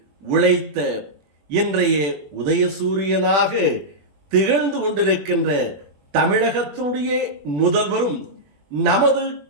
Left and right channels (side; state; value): left; late; 21 ms